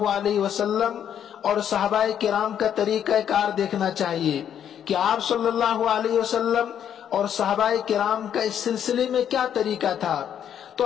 علیہ وسلم اور صحابہ کرام کا طریقہ کار دیکھنا چاہیے کہ آپ صلی اللہ علیہ وسلم اور صحابہ کرام کا اس سلسلے میں کیا طریقہ تھا۔ تو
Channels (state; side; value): quieter; right; 9.3 dB